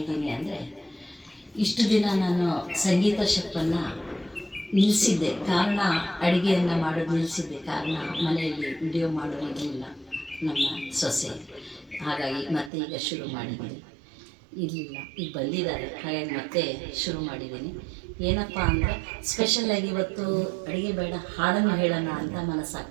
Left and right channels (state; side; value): drops out; left; at 12.7 s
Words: ಅಂದರೆ, ಇಷ್ಟು ದಿನ ನಾನು ಸಂಗೀತ ಶೆಫನ್ನು ನಿಲ್ಲಿಸಿದ್ದೆ. ಕಾರಣ ಅಡುಗೆಯನ್ನು ಮಾಡೋದು ನಿಲ್ಲಿಸಿದ್ದೆ. ಕಾರಣ ಮನೆಯಲ್ಲಿ ವಿಡಿಯೋ ಮಾಡೋದಿರಲಿಲ್ಲ ನಮ್ಮ ಸೊಸೆ. ಹಾಗಾಗಿ ಮತ್ತೆ ಈಗ ಶುರು ಮಾಡಿದ್ದೀನಿ. ಇರಲಿಲ್ಲ, ಈಗ ಬಂದಿದ್ದಾರೆ, ಹಾಗಾಗಿ ಮತ್ತೆ ಶುರು ಮಾಡಿದ್ದೀನಿ. ಏನಪ್ಪ ಅಂದರೆ, ಸ್ಪೆಷಲಾಗಿ ಇವತ್ತು ಅಡುಗೆ ಬೇಡ, ಹಾಡನ್ನು ಹೇಳೋಣ ಅಂತ